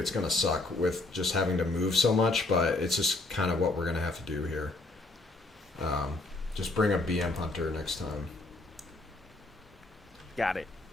going to suck with just having to move so much, but it's just kind of what we're going to have to do here. Just bring a BM Hunter next time. Got it.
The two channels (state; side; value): quieter; right; 3.1 dB